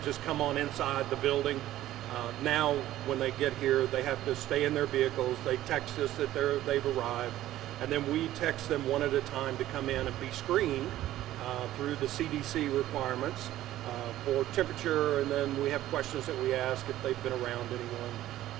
just come on inside the building. Now when they get here, they have to stay in their vehicles. They text us that they've arrived, and then we text them one at a time to come in and be screened through the CDC requirements for temperature, and then we have questions that we ask if they've been around anyone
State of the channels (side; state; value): left; quieter; 14.1 dB